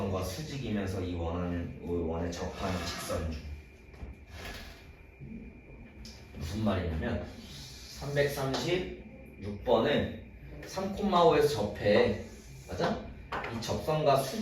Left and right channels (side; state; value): both; identical; correlation 1.00